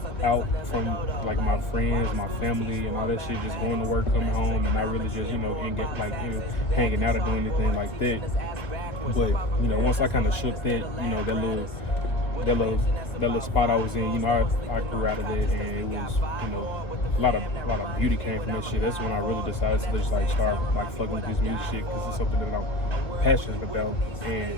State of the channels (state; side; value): late; right; 2.1 ms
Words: out from, like, my friends, my family, and all that shit, just going to work, coming home, and not really just, you know, and get, like, you know, hanging out or doing anything like that. But, you know, once I kind of shook that, you know, that little spot I was in, you know, I grew out of that, and it was, you know, a lot of beauty came from that shit. That's when I really decided to just, like, start, like, fucking with this music shit, because it's something that I'm passionate about,